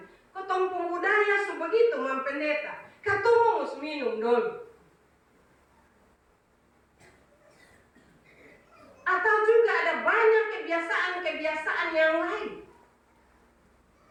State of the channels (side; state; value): both; identical; correlation 1.00